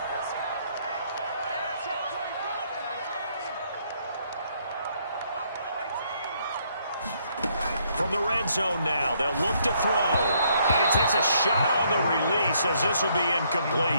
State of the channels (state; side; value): inverted; both; correlation -0.70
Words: From the red zone now, they'll look to throw. And he takes a shot on the release as this will be